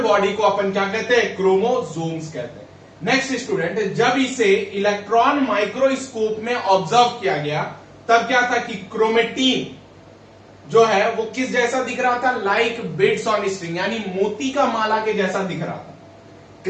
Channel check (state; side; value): identical; both; correlation 1.00